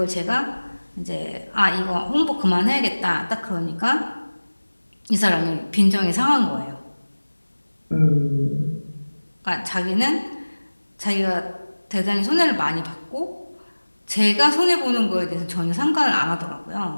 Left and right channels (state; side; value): inverted; both; correlation -1.00